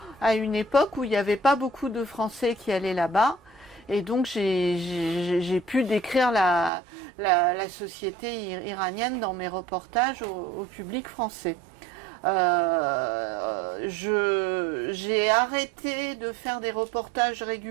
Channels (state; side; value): drops out; left; at 6.7 s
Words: à une époque où il n'y avait pas beaucoup de Français qui allaient là-bas. Et donc j'ai pu décrire la société iranienne dans mes reportages au public français. J'ai arrêté de faire des reportages